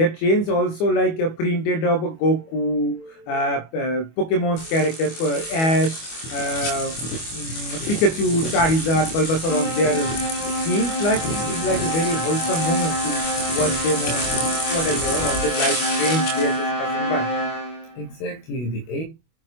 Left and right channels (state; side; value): late; right; 25 ms